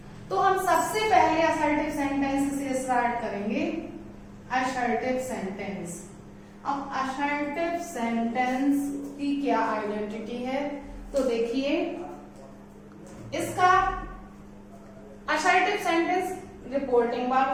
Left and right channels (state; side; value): identical; both; correlation 1.00